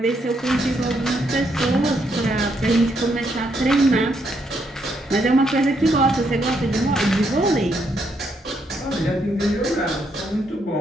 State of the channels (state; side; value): normal; both; correlation 0.76